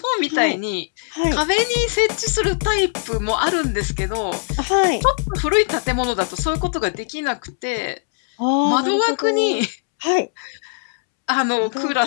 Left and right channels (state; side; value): silent; right; 66 dB below the other